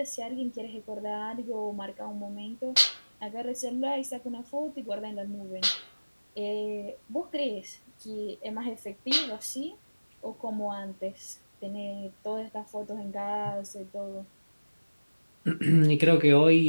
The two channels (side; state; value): both; inverted; correlation -1.00